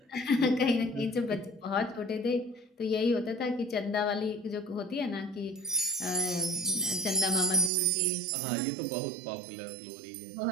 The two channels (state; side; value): drops out; left; at 7.7 s